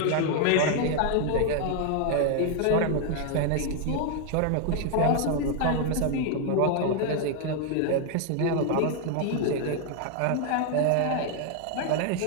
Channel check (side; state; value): both; different; correlation 0.00